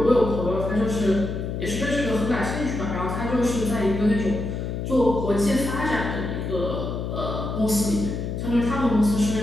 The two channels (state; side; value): noise; left; hum, 4 dB below the sound